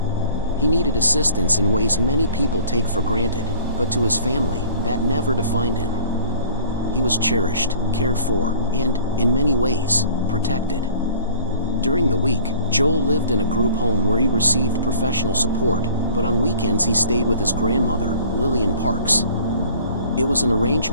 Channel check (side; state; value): both; inverted; correlation -0.48